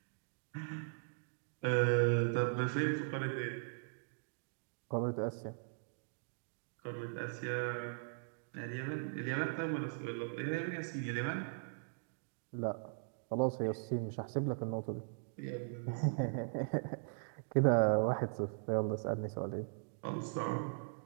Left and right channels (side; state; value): left; silent; digital silence